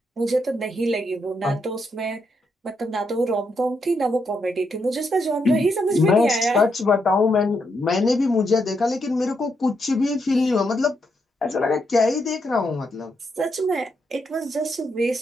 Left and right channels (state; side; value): normal; both; correlation 0.80